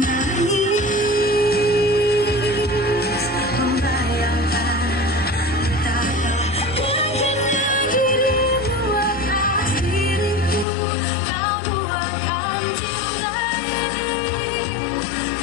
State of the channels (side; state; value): right; drops out; at 10.7 s